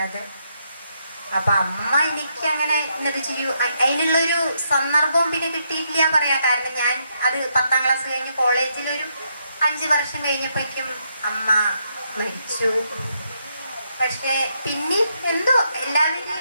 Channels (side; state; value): both; inverted; correlation -0.78